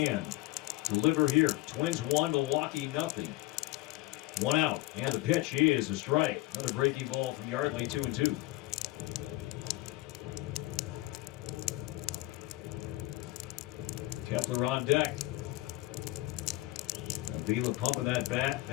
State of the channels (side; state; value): right; quieter; 19.2 dB